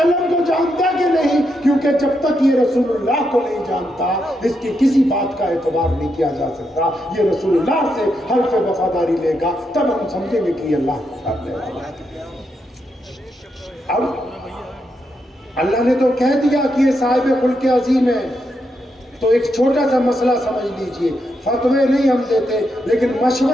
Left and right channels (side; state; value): both; normal; correlation 0.82